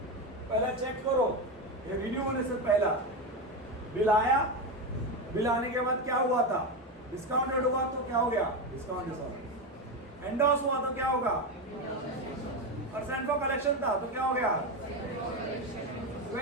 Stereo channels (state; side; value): normal; both; correlation 0.14